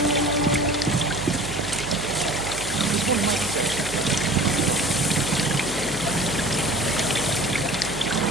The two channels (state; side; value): noise; right; hum, 14 dB below the sound